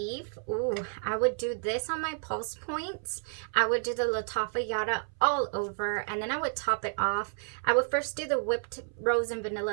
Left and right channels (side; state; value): left; silent; 57 dB below the other